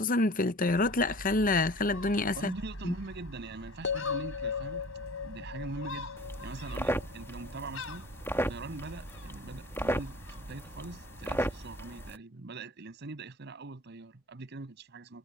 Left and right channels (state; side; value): normal; both; correlation 0.43